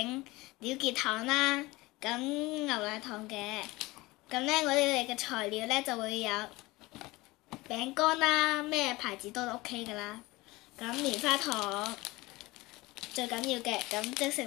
鳥結糖啦，咁牛奶糖嘅。咁呢，我哋嘅材料呢就會有餅乾啦，咩牌子都 OK 噶啦。咁棉花糖最緊要嘅，咁即食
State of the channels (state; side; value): quieter; right; 21.1 dB